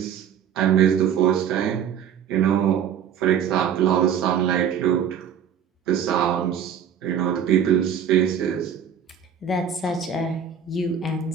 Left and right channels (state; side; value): quieter; left; 8.2 dB